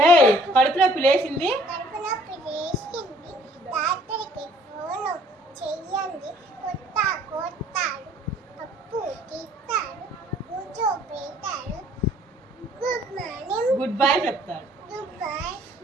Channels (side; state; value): both; normal; correlation 0.57